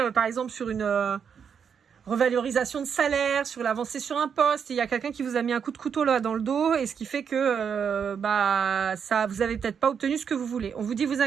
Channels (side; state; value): left; quieter; 7.1 dB